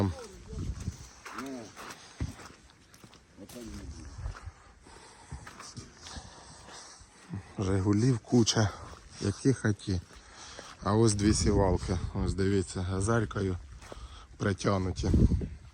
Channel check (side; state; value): both; identical; correlation 1.00